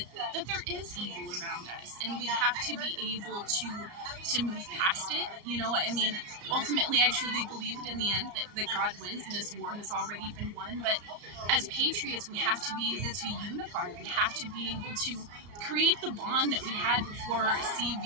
there is evil around us, and we have to be able to move past it. I mean, ultimately, I truly believe it in the end that God wins and this war has already been won. But as patriots, we have to be able to unify. We have to be able to create the bond that we had before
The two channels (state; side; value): late; left; 34 ms